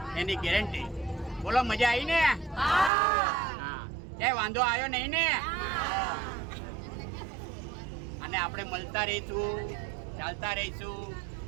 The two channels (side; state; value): left; drops out; at 2.9 s